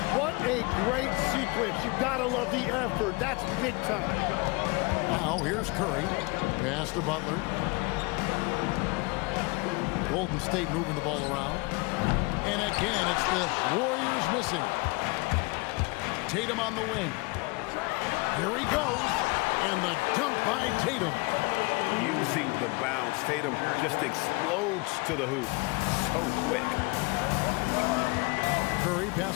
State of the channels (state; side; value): quieter; right; 26.6 dB